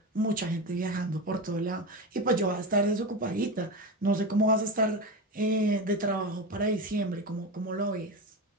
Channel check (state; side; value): normal; both; correlation 0.21